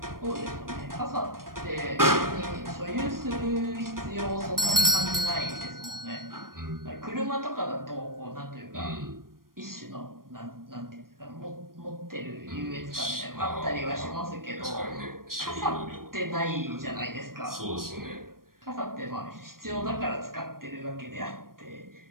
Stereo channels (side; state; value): left; late; 0.91 ms